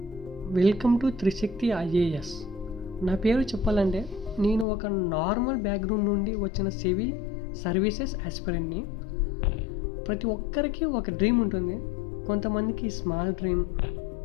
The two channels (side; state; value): right; drops out; at 4.7 s